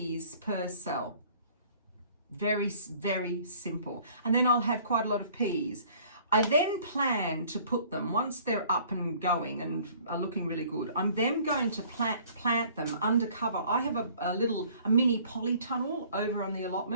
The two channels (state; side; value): inverted; both; correlation -0.55